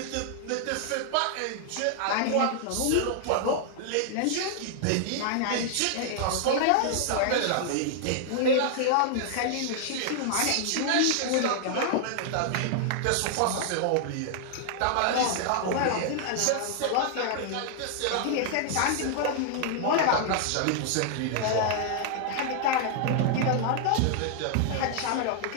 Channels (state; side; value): different; both; correlation 0.00